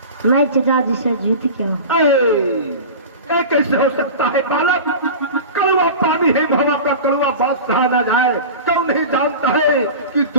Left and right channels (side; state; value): both; inverted; correlation -0.32